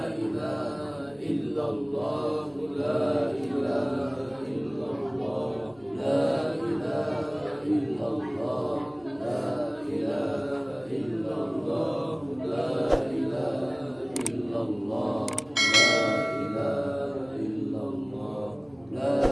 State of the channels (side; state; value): right; noise; hum, 28 dB below the sound